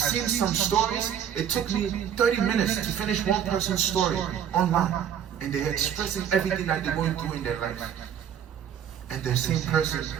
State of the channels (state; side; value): quieter; left; 9.0 dB